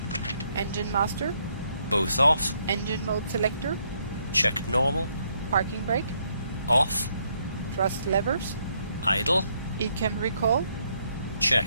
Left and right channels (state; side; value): inverted; both; correlation -0.73